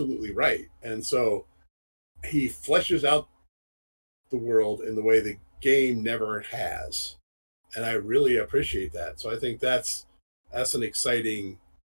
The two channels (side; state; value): both; inverted; correlation -1.00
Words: right. And so he fleshes out the world in the way the game never has, and I really appreciate that. So I think that's an exciting